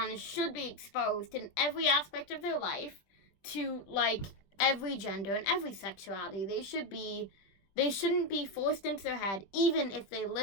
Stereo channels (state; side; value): late; right; 20 ms